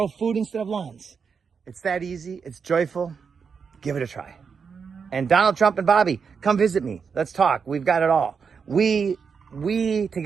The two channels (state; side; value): quieter; left; 5.9 dB